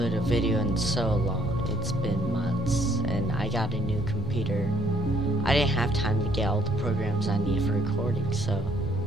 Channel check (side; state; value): both; normal; correlation 0.66